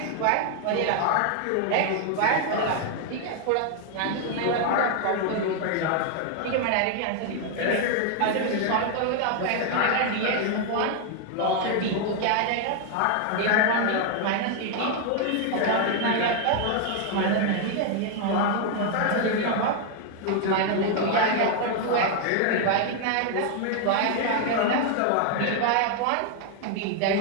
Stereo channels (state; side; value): different; both; correlation 0.00